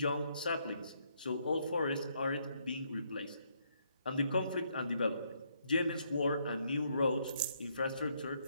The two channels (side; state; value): both; inverted; correlation -0.73